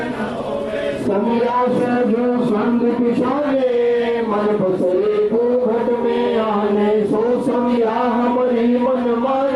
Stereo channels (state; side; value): identical; both; correlation 1.00